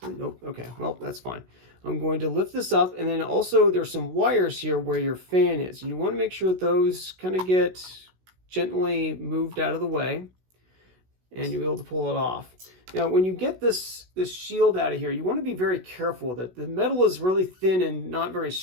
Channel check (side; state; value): left; late; 16 ms